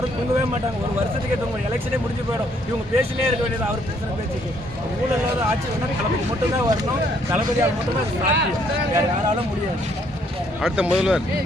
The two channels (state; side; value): normal; both; correlation 0.67